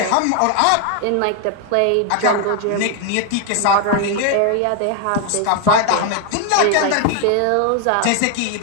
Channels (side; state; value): both; different; correlation 0.01